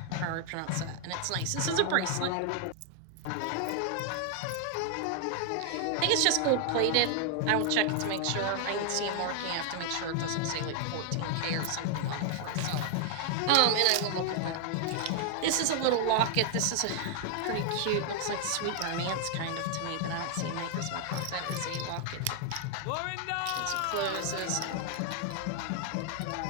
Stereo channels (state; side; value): different; both; correlation 0.00